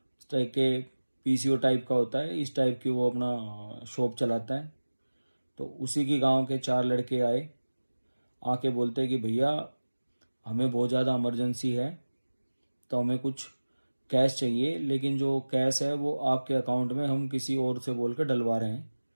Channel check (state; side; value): inverted; both; correlation -1.00